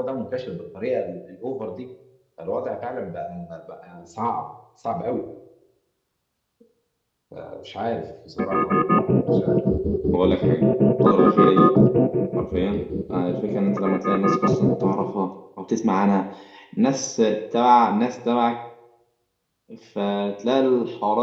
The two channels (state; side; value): identical; both; correlation 1.00